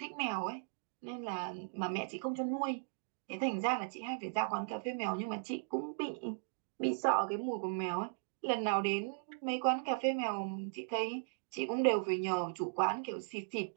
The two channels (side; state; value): left; silent; digital silence